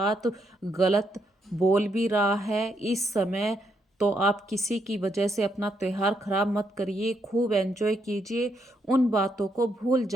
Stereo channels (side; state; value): both; normal; correlation 0.77